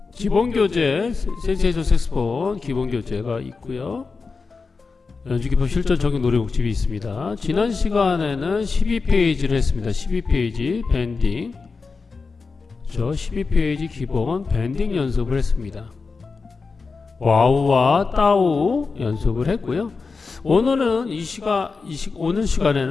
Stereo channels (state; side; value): quieter; right; 4.5 dB